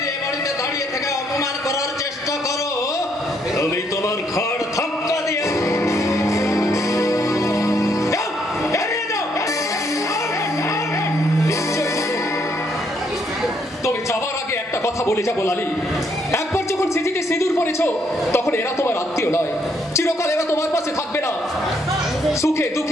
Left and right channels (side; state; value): both; normal; correlation 0.72